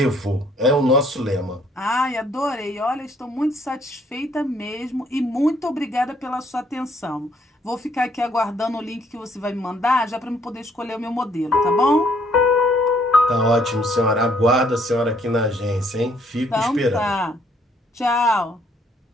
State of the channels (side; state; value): both; normal; correlation 0.66